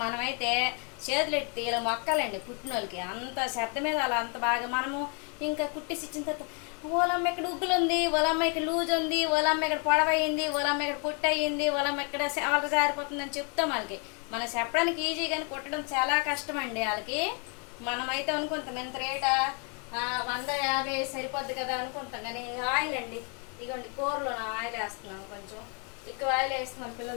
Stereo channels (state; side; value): quieter; right; 37.0 dB